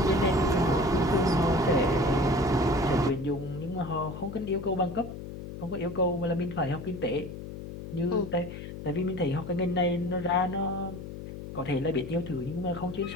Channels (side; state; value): left; noise; hum, 10 dB below the sound